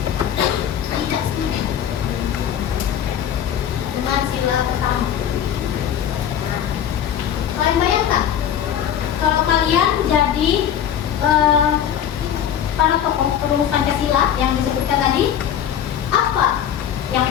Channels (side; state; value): right; quieter; 9.6 dB